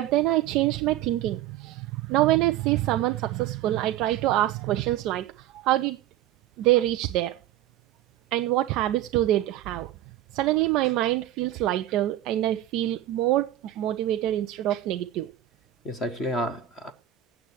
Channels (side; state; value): left; quieter; 13.0 dB